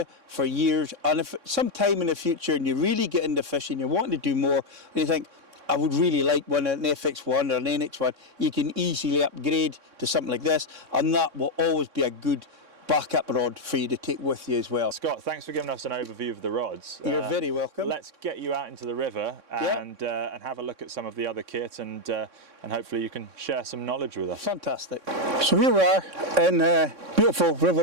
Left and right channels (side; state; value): left; late; 3.6 ms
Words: for years. And if sometime in the future, and you really get into fishing, you're wanting to do more, and you think, I would really like one, an FX1 or an NX1, you can easily upgrade to something like this. And that will always be a good backup rod for you to take with you as well. Scott, thanks for giving us an overview of the rods. You're very welcome. Let's get you out into the river and have a look at some of the other kit, and hopefully you can share some knowledge with us. Fantastic. So here we are in beautiful